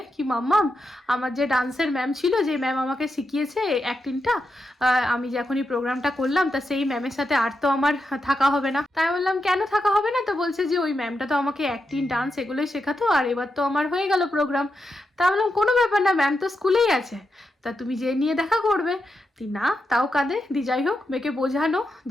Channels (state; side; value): normal; both; correlation 0.86